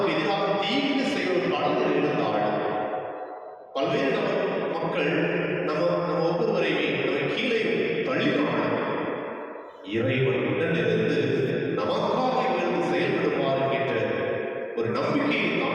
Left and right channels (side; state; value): both; identical; correlation 1.00